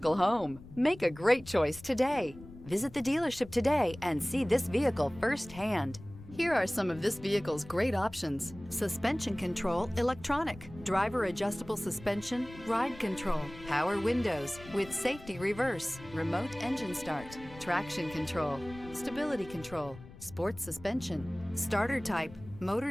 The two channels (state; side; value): noise; left; rumble, 17 dB below the sound